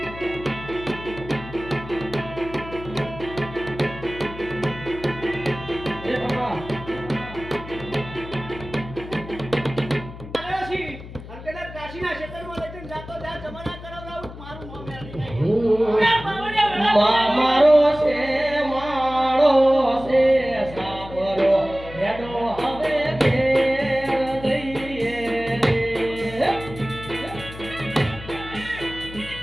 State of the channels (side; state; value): left; noise; hum, 14 dB below the sound